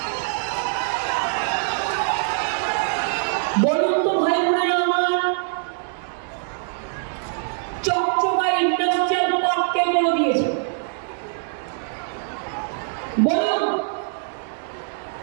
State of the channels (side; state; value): left; silent; digital silence